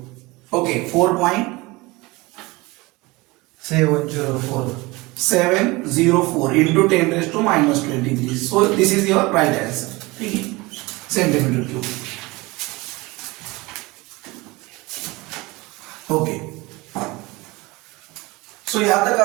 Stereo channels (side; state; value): left; quieter; 22.9 dB